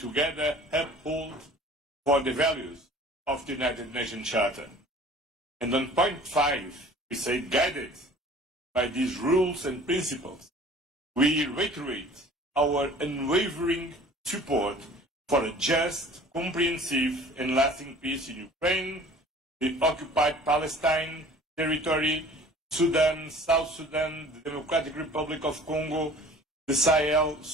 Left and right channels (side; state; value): both; normal; correlation 0.47